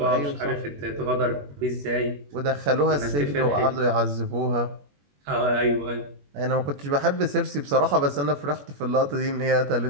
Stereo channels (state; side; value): late; left; 21 ms